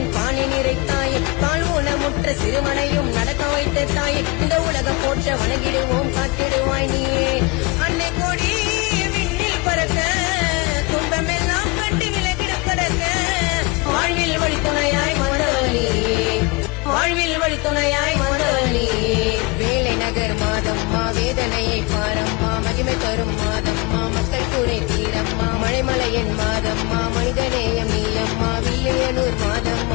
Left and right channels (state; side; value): quieter; right; 26.1 dB